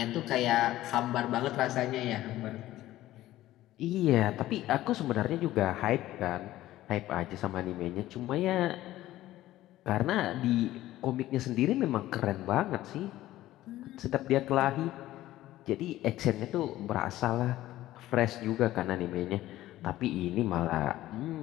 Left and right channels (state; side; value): quieter; right; 15.1 dB